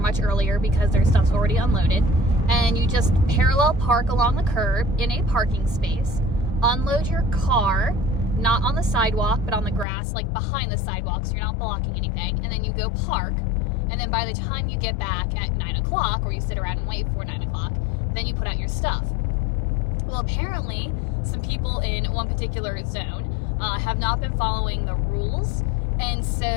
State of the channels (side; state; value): right; drops out; at 9.9 s